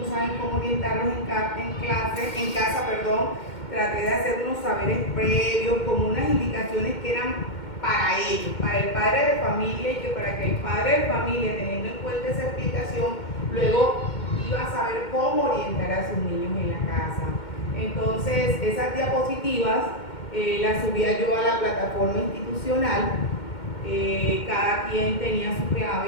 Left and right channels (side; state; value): right; late; 2.1 ms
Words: saben cómo orientarlos en casa, traté de hacer unos saberes previos, como unas indicaciones que eran para ellos, para el padre de familia, y que para que el padre de familia, teniendo en cuenta esa explicación, luego iba a saber cómo orientar a sus niños en la casa. Entonces, esas diapositivas las subía yo a la plataforma institucional, cada quien tenía su